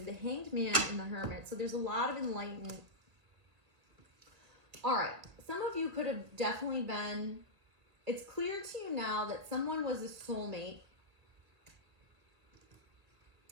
have the Hanged Man and the Hermit. So there's a lot of enlightenment. All right. Some of you could have definitely been, it's clear to you now that someone was a soulmate,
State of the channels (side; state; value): left; late; 2.4 ms